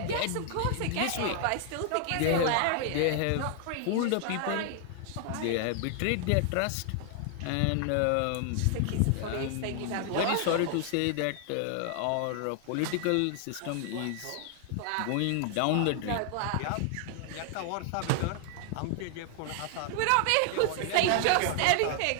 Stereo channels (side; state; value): both; different; correlation 0.00